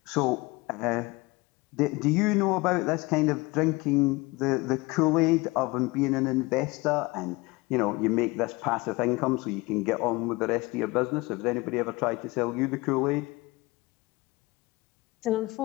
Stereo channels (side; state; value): right; quieter; 23.2 dB